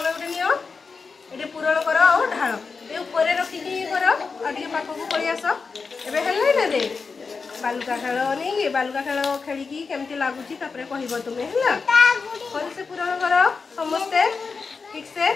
ये पूरण कर और ढाल ये ऊपर रखिकी कर आगे पाख को पड़ी आस एबे हेल्ले ना रे बालुका खेल नहीं बालुका खेल खेलिकी केमती लगुची तापरे कहबो तुमे हला भल से पूरण कर समस्ते ठीक से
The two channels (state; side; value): quieter; right; 4.8 dB